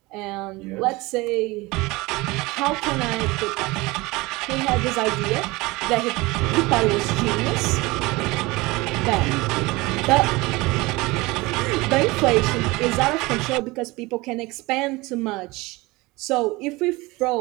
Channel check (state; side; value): quieter; left; 22.4 dB